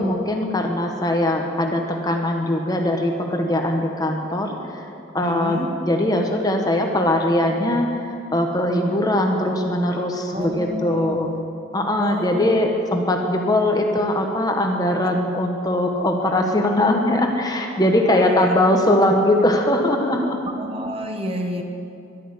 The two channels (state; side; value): normal; both; correlation 0.55